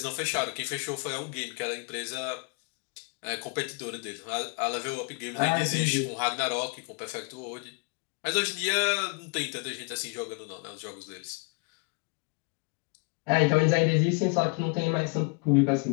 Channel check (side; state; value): right; quieter; 33.3 dB